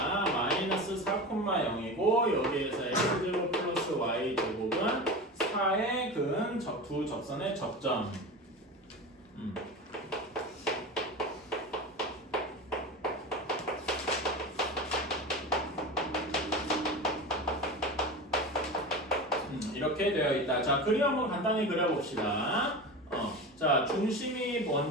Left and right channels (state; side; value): normal; both; correlation 0.27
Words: 마이너스 4,0이고 여기에서 X제곱 플러스 Y제곱은 4의 근 두 접선의 접점. 이렇게 되어 있다. 자, 그림 한번 간단히 그려봅시다. 자, 중심이